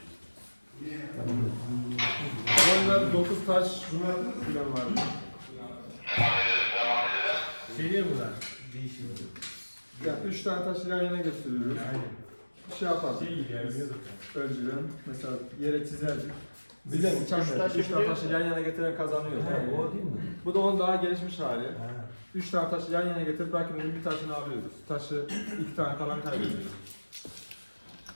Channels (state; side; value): inverted; both; correlation -1.00